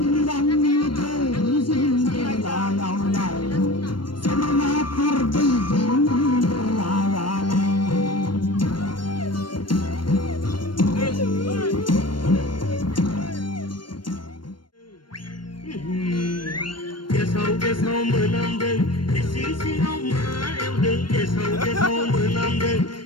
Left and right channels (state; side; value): late; right; 0.72 ms